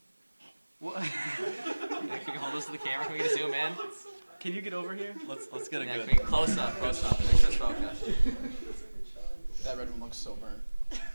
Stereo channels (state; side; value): inverted; both; correlation -1.00